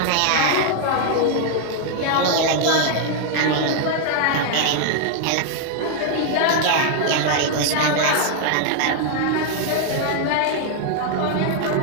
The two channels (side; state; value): both; different; correlation 0.00